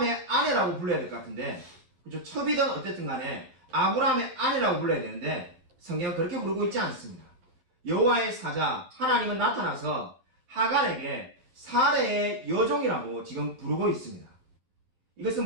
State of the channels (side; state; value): left; late; 12 ms